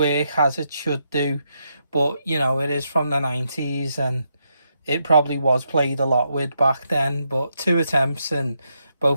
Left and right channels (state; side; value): inverted; both; correlation -0.81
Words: as it should do, but you know, it is from the 90s and it probably was played a lot with back then. But 2 attempts and